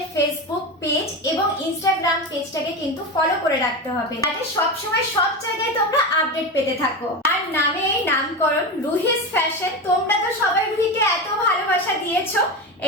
Facebook page এবং ইনস্টাগ্রাম পেজটাকে কিন্তু ফলো করে রাখতে হবে, যাতে সব সময় সব জায়গায় তোমরা আপডেট পেতে থাকো। আর নামে এই নামকরণ রুহিস ফ্যাশন। তোমরা তো সবাই রুহিকে এত ভালোবাসা দিয়েছো,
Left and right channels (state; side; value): normal; both; correlation 0.20